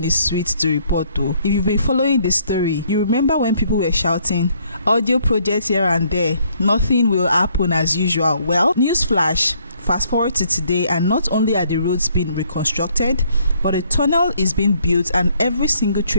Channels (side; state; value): both; inverted; correlation -0.67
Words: is sweet to report though. If you've been following the story, you remember when people were shouting, audio projects here and there, nothing will happen as usual. Well, newsflash. Fast forward to today, and not only are the roads being reconstructed, but a tunnel is being built and every single